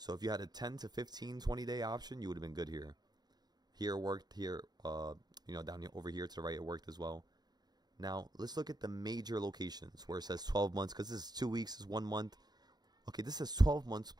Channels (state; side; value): late; left; 0.20 ms